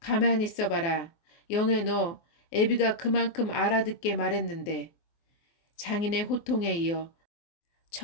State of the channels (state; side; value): late; right; 24 ms